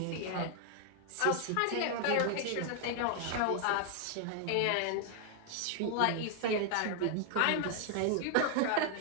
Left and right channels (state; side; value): different; both; correlation 0.00